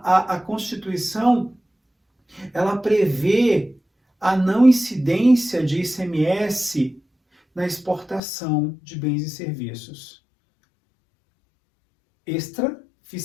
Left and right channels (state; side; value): drops out; right; at 8.2 s